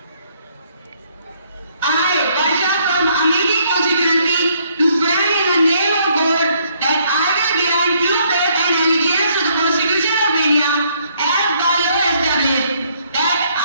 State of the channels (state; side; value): inverted; both; correlation -0.68